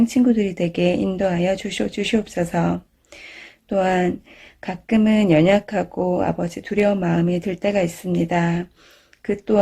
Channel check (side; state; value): both; identical; correlation 1.00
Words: 친구들이 되게 인도하여 주시옵소서. 또한 가끔은 연약하고 아버지 두려운 마음이 들 때가 있습니다. 그